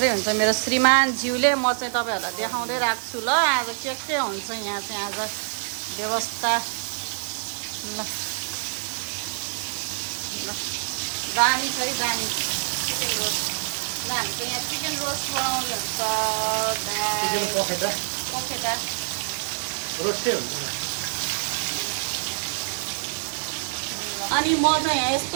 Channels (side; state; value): left; silent; 61 dB below the other